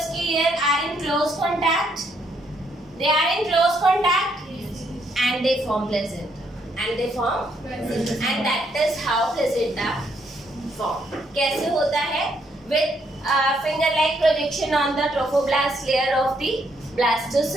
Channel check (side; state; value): both; normal; correlation 0.73